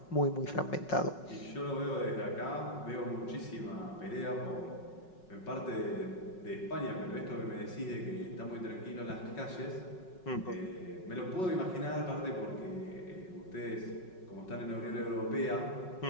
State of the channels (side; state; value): right; late; 5.4 ms